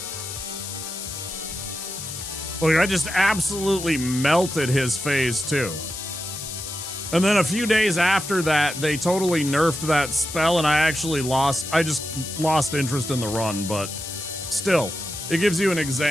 like, I just absolutely melted his phase 2. And then a few days after that, they totally nerfed that spell, and I just lost interest in the run, but still, it gives you an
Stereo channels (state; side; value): noise; left; hiss, 8 dB below the sound